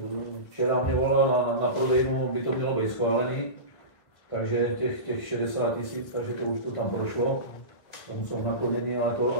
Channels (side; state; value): right; late; 1.6 ms